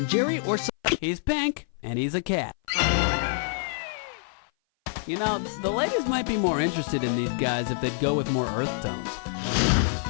Jerry, or he's pink and he's a cat. You know, the ladies might be more interested in these guys if they'd go with more earth tones.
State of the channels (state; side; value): silent; right; 57 dB below the other